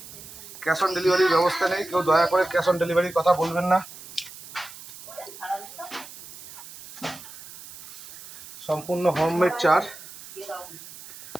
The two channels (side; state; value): right; noise; hiss, 16 dB below the sound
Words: ক্যাশ অন ডেলিভারির ব্যবস্থা নেই, কেউ দয়া করে ক্যাশ অন ডেলিভারির কথা বলবেন না। সম্পূর্ণ হোমমেড চার।